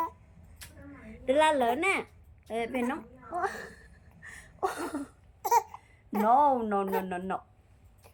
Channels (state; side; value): identical; both; correlation 1.00